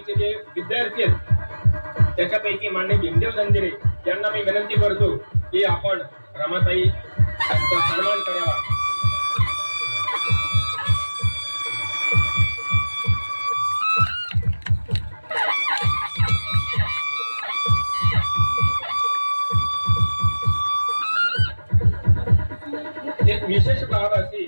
जे विद्यार्थी आहेत त्याच्यापैकी मान्य भीमदेव जंजिरे यांना मी विनंती करतो की आपण रमाताई यांचा सन्मान करावा। विशेष बाब अशी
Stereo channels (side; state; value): both; inverted; correlation -1.00